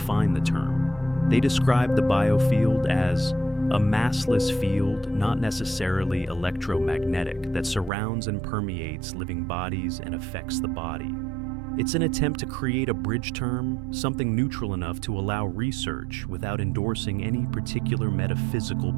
the term. They described the biofield as a massless field, not necessarily electromagnetic, that surrounds and permeates living bodies and affects the body. It's an attempt to create a bridge term, something neutral enough to allow research without endorsing any particular metaphysical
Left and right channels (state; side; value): drops out; left; at 7.9 s